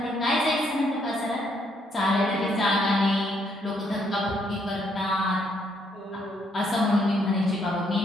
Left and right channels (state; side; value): normal; both; correlation 0.72